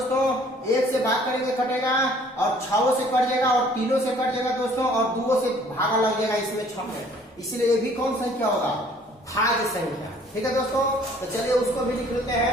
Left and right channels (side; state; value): both; normal; correlation 0.56